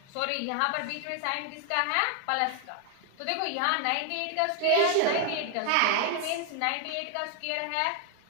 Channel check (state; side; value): different; both; correlation 0.00